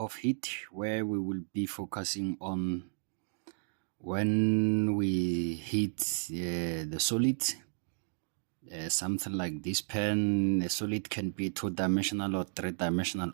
heat where we will be focusing on when we heat the solid, something like this pen. The solid can be two-dimensional or three-dimensional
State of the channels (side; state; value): left; silent; digital silence